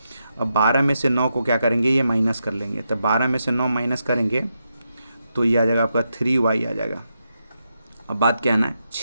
अब 12 में से 9 को क्या करेंगे, ये माइनस कर लेंगे। तो 12 में से 9 माइनस करेंगे तो ये आ जाएगा आपका 3y आ जाएगा। अब बात क्या है ना,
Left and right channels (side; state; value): both; inverted; correlation -0.85